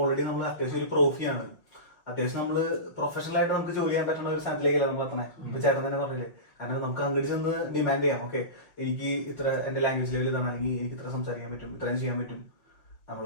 ഓൾറെഡി നമ്മൾ അത്യാവശ്യം ഒരു പ്രോഫിയാണ്. അത്യാവശ്യം നമ്മള് പ്രൊഫഷണൽ ആയിട്ട് നമുക്ക് ജോലി ചെയ്യാൻ പറ്റുന്ന ഒരു സ്ഥാനത്തിലേക്കല്ല നമ്മൾ എത്തണേ. ഇപ്പൊ ചേട്ടൻ തന്നെ പറഞ്ഞില്ലേ, കാരണം നമുക്ക് അങ്ങോട്ട് ചെന്ന് ഡിമാൻഡ് ചെയ്യാം. ഓക്കെ, എനിക്ക് ഇത്ര എന്റെ ലാംഗ്വേജ് ലെവൽ ഇതാണ്, അല്ലെങ്കിൽ എനിക്ക് ഇത്ര സംസാരിക്കാൻ പറ്റും, ഇത്രയും ചെയ്യാൻ പറ്റും. നമ്മൾ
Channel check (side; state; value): right; late; 5.7 ms